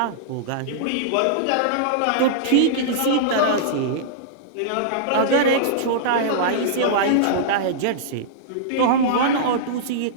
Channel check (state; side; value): different; both; correlation -0.02